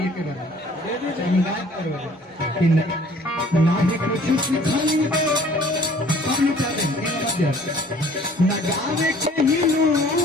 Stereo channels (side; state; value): both; normal; correlation 0.54